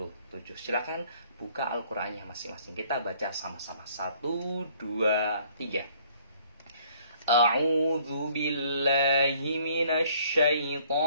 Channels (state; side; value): inverted; both; correlation -0.60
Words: Silakan buka Al-Qur'annya masing-masing. Kita baca sama-sama. 1 2 3. A'udzu billahi minasy